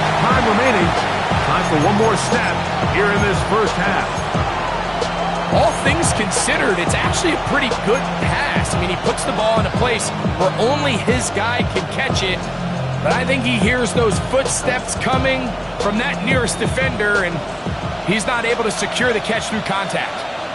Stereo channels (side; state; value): both; identical; correlation 1.00